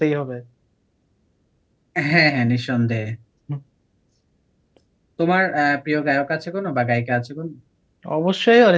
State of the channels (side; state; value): both; identical; correlation 1.00